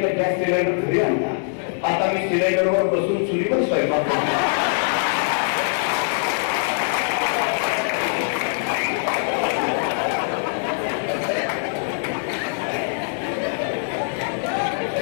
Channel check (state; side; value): silent; right; 64 dB below the other